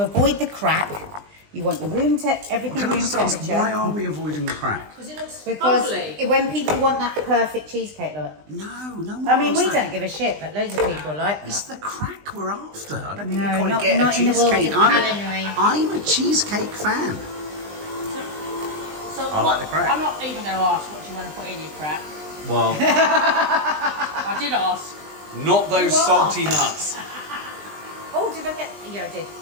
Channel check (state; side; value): late; left; 20 ms